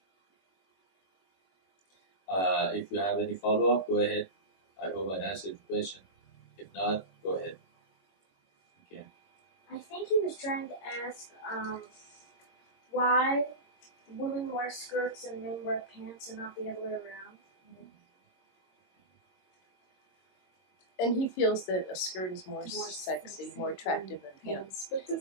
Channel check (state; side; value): late; right; 22 ms